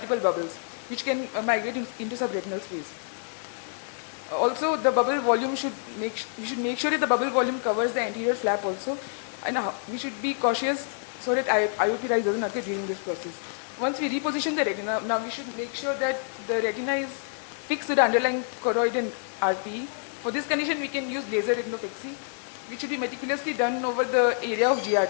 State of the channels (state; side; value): silent; right; digital silence